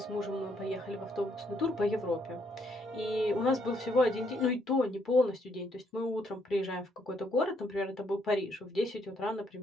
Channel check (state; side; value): normal; both; correlation 0.72